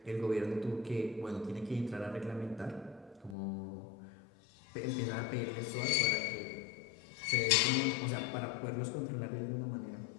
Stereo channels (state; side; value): drops out; right; at 3.4 s